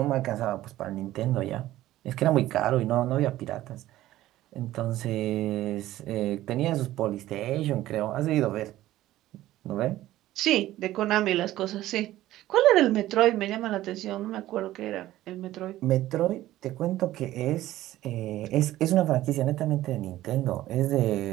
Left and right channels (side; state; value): left; quieter; 15.0 dB